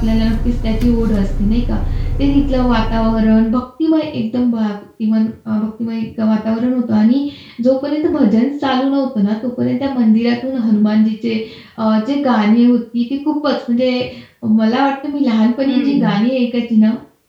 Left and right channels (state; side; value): identical; both; correlation 1.00